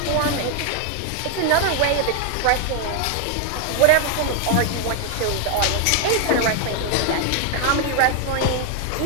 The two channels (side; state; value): both; different; correlation 0.00